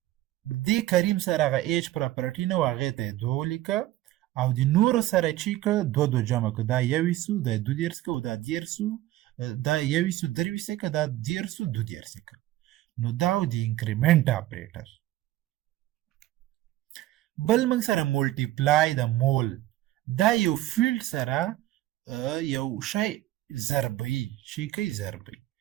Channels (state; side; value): quieter; left; 15.3 dB